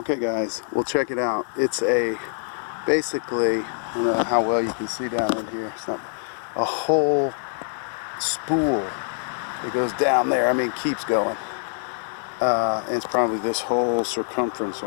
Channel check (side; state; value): right; silent; digital silence